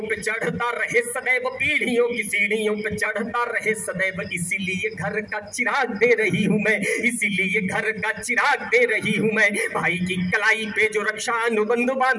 पे चढ़ता रहे सदैव, पीढ़ियों की सीढ़ियों पे चढ़ता रहे सदैव, इसीलिए घर का चिराग दे रही हूं मैं, इसीलिए घर का चिराग दे रही हूं मैं। भाई की कलाई पे जो रक्षा अनुबंध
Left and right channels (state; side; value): identical; both; correlation 1.00